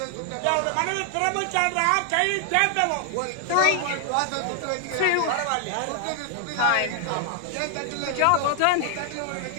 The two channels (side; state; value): both; different; correlation 0.00